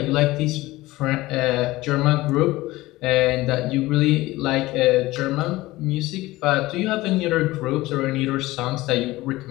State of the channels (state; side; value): quieter; right; 18.6 dB